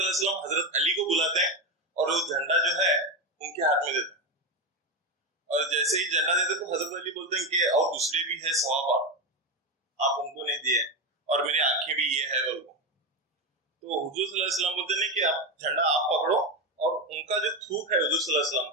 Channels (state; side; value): normal; both; correlation 0.14